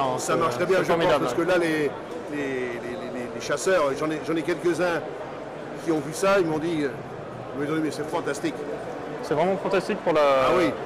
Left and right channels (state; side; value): identical; both; correlation 1.00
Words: Ça marche très bien, je pense, formidable. parce que là, les chasseurs, j'en ai quelques-uns qui ont vu ça, ils m'ont dit, mais c'est fantastique. C'est vraiment fantastique pour, oui.